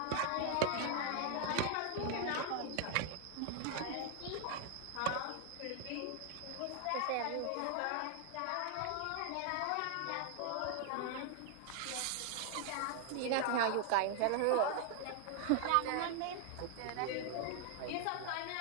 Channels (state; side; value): different; both; correlation 0.00